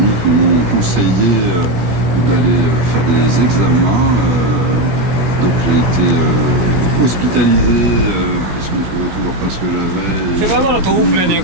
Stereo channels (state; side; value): late; left; 17 ms